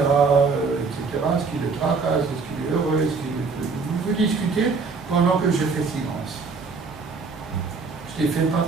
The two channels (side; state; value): left; quieter; 4.6 dB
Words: etc., ce qui le tracasse, est-ce qu'il est heureux, vous discutez pendant que je fais silence. Je ne les fais pas